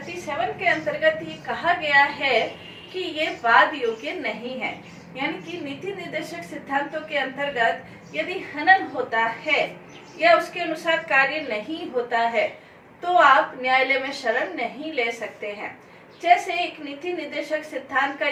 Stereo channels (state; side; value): identical; both; correlation 1.00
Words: के अंतर्गत ये कहा गया है कि ये वाद योग्य नहीं है। यानी कि नीति निर्देशक सिद्धांतों के अंतर्गत यदि हनन होता है या उसके अनुसार कार्य नहीं होता है तो आप न्यायालय में शरण नहीं ले सकते हैं। जैसे एक नीति निर्देशक सिद्धांत का